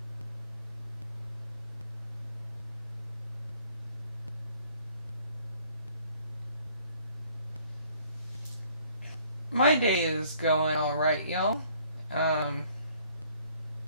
My day is going alright, y'all.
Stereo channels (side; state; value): both; inverted; correlation -0.60